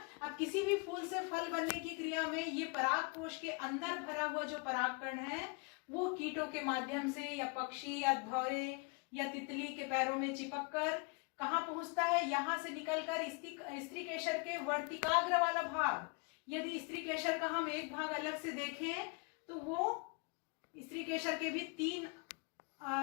अब किसी भी फूल से फल बनने की क्रिया में ये परागकोश के अंदर भरा हुआ जो परागकण है वो कीटों के माध्यम से या पक्षी या भौरे या तितली के पैरों में चिपक कर कहाँ पहुंचता है? यहां से निकलकर स्त्री केसर के वर्तिकाग्र वाला भाग। यदि स्त्री केसर का हम एक भाग अलग से देखें तो वो स्त्री केसर के भी 3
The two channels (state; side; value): quieter; right; 31.7 dB